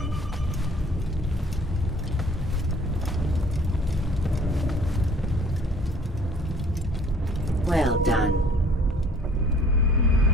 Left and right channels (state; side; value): normal; both; correlation 0.54